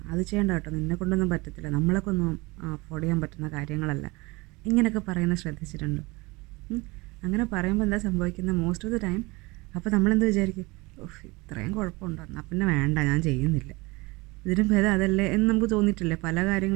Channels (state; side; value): quieter; left; 23.9 dB